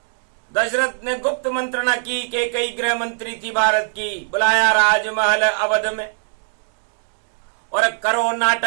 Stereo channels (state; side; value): silent; left; 65 dB below the other